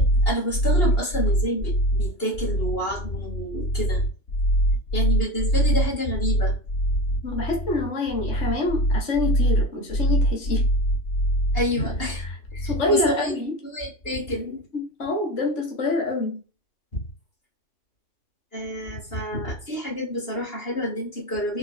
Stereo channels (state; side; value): late; right; 2.8 ms